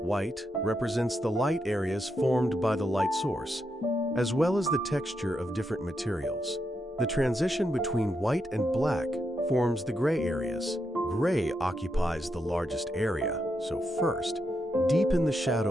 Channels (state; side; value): normal; both; correlation 0.83